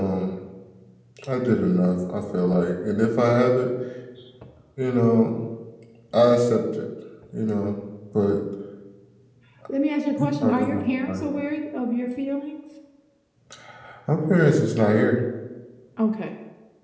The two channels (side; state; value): both; identical; correlation 1.00